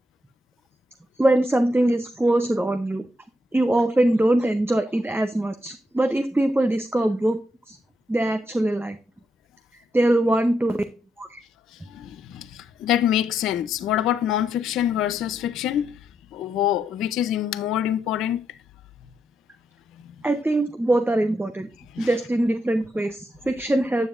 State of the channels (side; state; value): both; normal; correlation 0.81